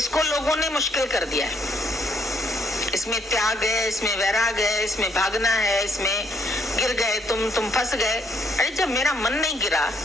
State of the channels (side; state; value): both; normal; correlation 0.70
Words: लोगों ने मुश्किल कर दिया है। इसमें त्याग है, इसमें वैराग है, इसमें भागना है, इसमें गिर गए तुम फंस गए। अरे जब मेरा मन नहीं गिरा